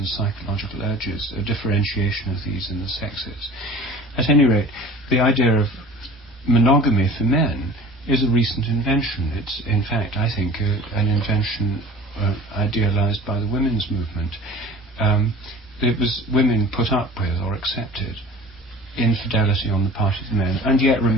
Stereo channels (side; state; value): both; normal; correlation 0.43